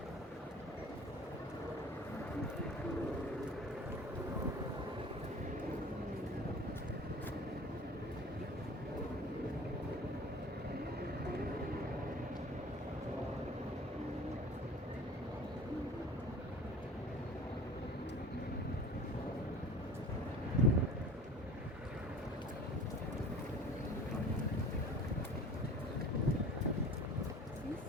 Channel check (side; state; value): both; normal; correlation 0.43